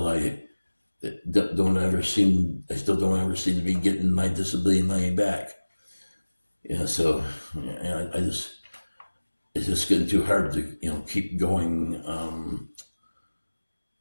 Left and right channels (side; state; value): both; inverted; correlation -1.00